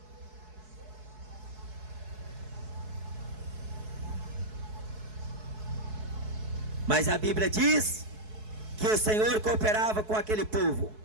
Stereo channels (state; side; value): late; left; 4.7 ms